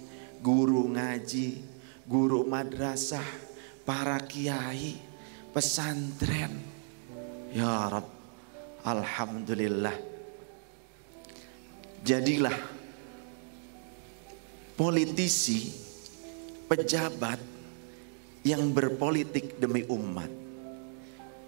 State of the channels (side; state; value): left; silent; 55 dB below the other